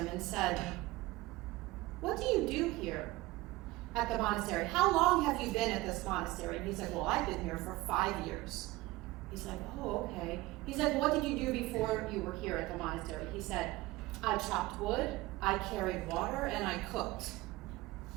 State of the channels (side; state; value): left; quieter; 19.1 dB